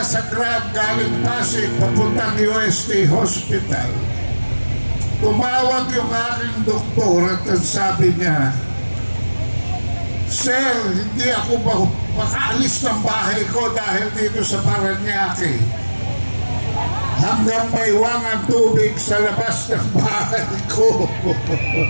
Grab galing Pasig papuntang UST Hospital. Tumawag yung aking doktor at ang sabi niya, "Sir, hindi ako makaalis ng bahay ko dahil dito sa Paranaque. Hanggang may wangang tubig sa labas ng bahay ko."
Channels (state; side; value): inverted; both; correlation -1.00